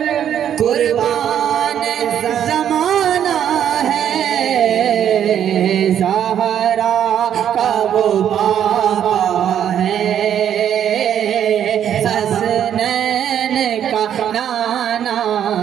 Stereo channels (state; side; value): quieter; left; 9.6 dB